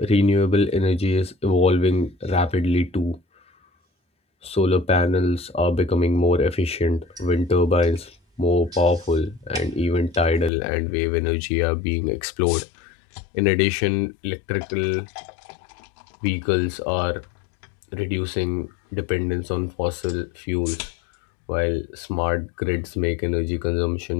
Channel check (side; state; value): right; drops out; at 10.5 s